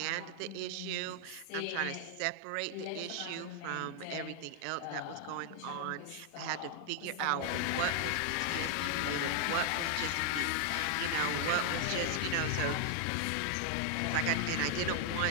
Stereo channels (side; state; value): both; different; correlation 0.00